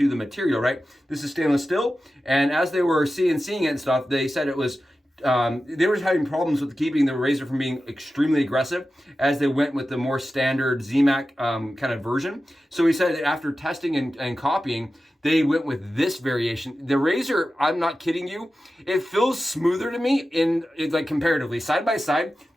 the material, right? This is stainless steel, and as they were seeing it and stuff, they said it was they were having problems with keeping the razor from being extremely aggressive as they went with the more standard ZMAC kind of version. So he said that after testing and copying, they went with this variation. The razor, I'm not kidding you, it feels smoother to me like comparatively. Side by side,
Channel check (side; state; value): both; normal; correlation 0.93